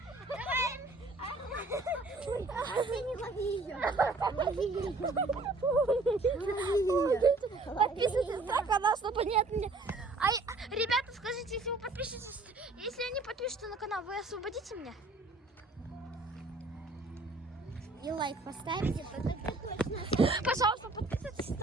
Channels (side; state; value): left; quieter; 3.3 dB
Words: Не лови ее. Подписывайтесь на канал, чтобы не от меня. Ребята, скажите, если вы подпишетесь, если они подпишутся на канал, вы освободите меня? И лайк поставите, тогда точно. Пожалуйста, подписывайтесь и